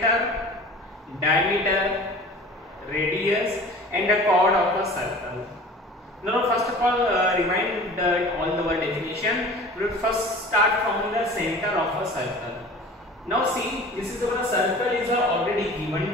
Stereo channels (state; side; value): normal; both; correlation 0.42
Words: diameter, radius, and the chord of a circle. Now, first of all, remind all the word definition. We will first start from the center of a circle. Now, see, this is our circle is already given